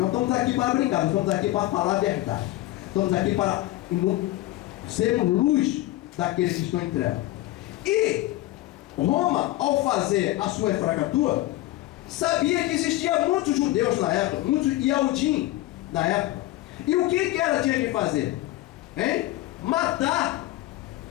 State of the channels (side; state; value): right; quieter; 16.7 dB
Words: estamos aqui para brincar, nós estamos aqui para falar a verdade. Estamos aqui para sermos luz daqueles que estão em trevas. E Roma, ao fazer a sua efragatura, sabia que existia muitos judeus na época, muitos Yahudim na época. E o que ela tinha que fazer? Hein? Matar.